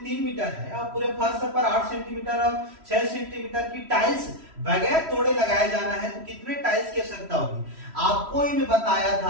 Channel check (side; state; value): left; late; 3.1 ms